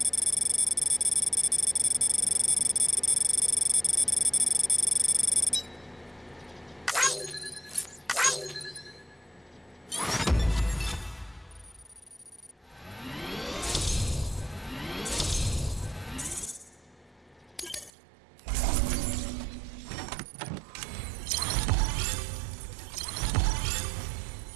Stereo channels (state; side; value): drops out; left; at 17.9 s